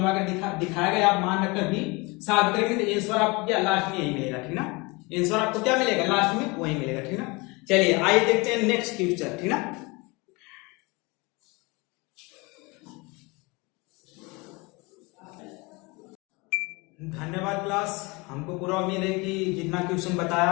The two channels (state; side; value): quieter; right; 26.4 dB